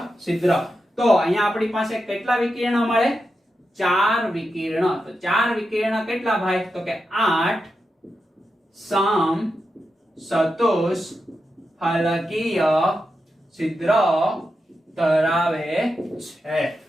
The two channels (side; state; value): both; normal; correlation 0.88